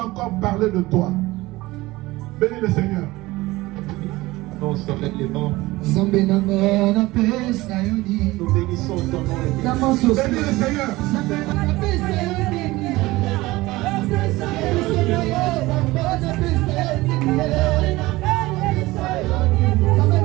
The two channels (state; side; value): quieter; left; 19.6 dB